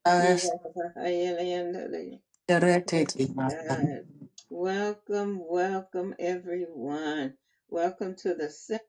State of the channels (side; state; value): both; identical; correlation 1.00